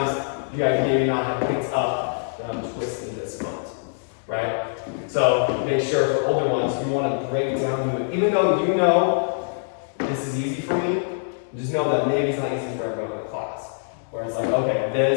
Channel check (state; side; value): silent; right; digital silence